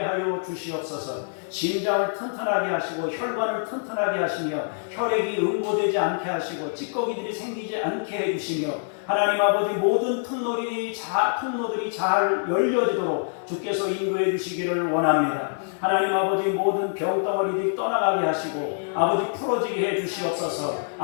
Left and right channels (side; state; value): right; silent; 61 dB below the other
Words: 주시옵소서. 심장을 튼튼하게 하시고 혈관을 튼튼하게 하시며 혈액이 응고되지 않게 하시고 찌꺼기들이 생기지 않게 해주시며 하나님 아버지 모든 통로들이 잘 열려지도록 주께서 인도해 주시기를 원합니다. 하나님 아버지 모든 병덩어리들이 떠나가게 하시고 아버지 풀어지게 해 주시옵소서.